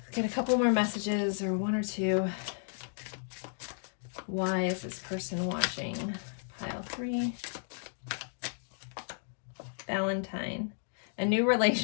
get a couple more messages, or one or two. Why is this person watching pile 3? Valentine. A new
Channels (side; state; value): right; silent; digital silence